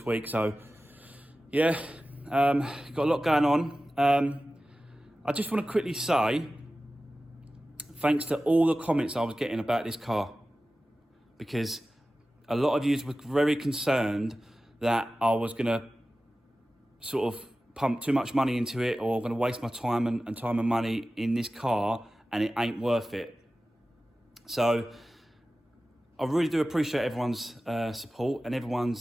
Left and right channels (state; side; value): normal; both; correlation 0.95